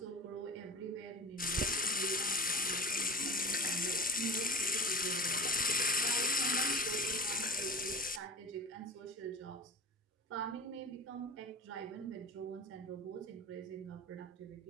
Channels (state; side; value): normal; both; correlation 0.34